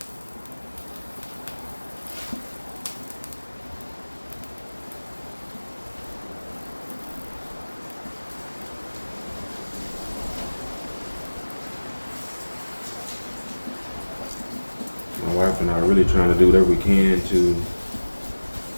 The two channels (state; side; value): inverted; both; correlation -1.00